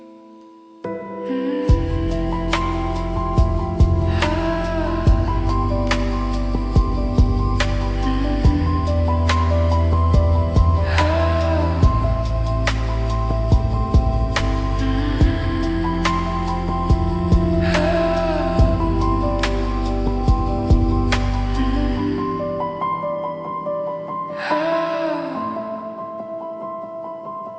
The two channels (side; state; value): both; identical; correlation 1.00